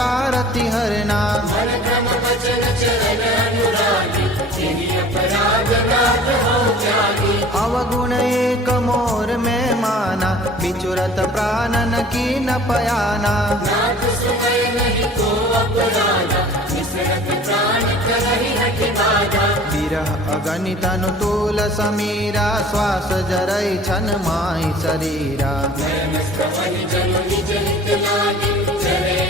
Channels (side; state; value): both; normal; correlation 0.46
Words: हरना। मन क्रम वचन चरण अनुरागी, तेहि अपराध नाथ हो जागी। अवगुण एक मोर में माना, बिचुरत प्राणन की न पयाना। नाथ सुनय नहीं को अपराधा, विसरत प्राण करहि हठि बाधा। विरह अगणित अनुतूल समीरा, श्वास जरई छन माहि शरीरा। नयन स्तवहि जनु निज हित लागी, चरे